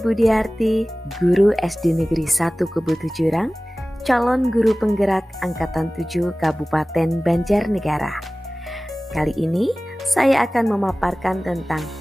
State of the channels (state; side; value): normal; both; correlation 0.98